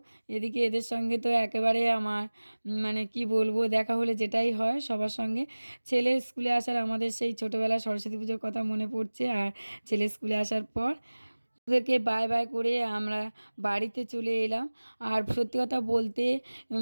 এদিকে এদের সঙ্গে তো একেবারে আমার মানে কি বলবো, দেখা হলে যেটাই হয় সবার সঙ্গে। ছেলে স্কুলে আসার আমাদের সেই ছোটোবেলা সরস্বতী পুজোর কথা মনে পড়ছে। আর ছেলে স্কুলে আসার পর ওদেরকে বাই বাই করে আমরা বাড়িতে চলে এলাম। আর সত্যি কথা বলতে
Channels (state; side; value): inverted; both; correlation -1.00